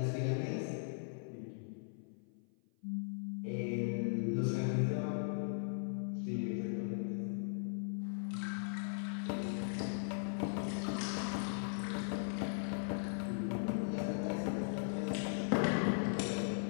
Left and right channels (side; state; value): right; silent; 52 dB below the other